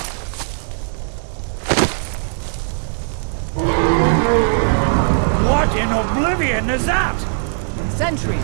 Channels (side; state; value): left; silent; digital silence